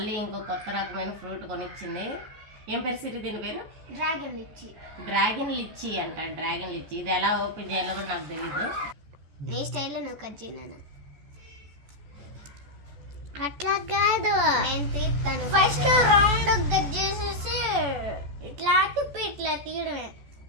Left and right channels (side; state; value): left; late; 14 ms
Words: ఇంకో కొత్త రకమైన ఫ్రూట్ కొనిచ్చింది. ఏం పేరు సిరి దీని పేరు? డ్రాగన్ లిచ్చి. డ్రాగన్ లిచ్చి అంట. డ్రాగన్ లిచ్చి ఇది ఎలా ఓపెన్ చేయాలో కూడా నాకు తెలీదు. నీ స్టైల్లో నువ్వు కట్ చేయను. అట్లా కాదు, నేను తీస్తాను. ఫస్ట్ రౌండ్ కట్ చేసేసి ఇట్లా తిప్పి ఇట్లా తీయడమే.